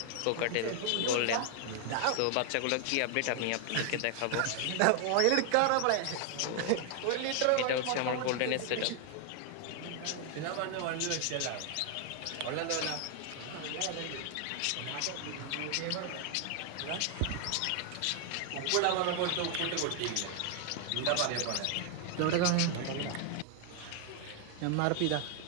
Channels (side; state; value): both; different; correlation 0.00